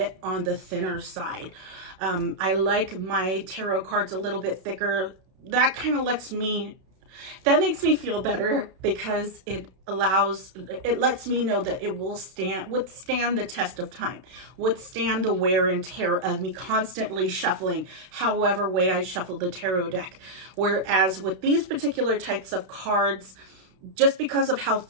on the thinner side. I like my tarot cards a little bit thicker. That kind of makes me feel better, because it lets me know that it will withstand the test of time, withstand the wear and tear of me constantly shuffling however way I shuffle the tarot deck. Whereas with these particular types of cards, just because of how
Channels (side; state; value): left; late; 32 ms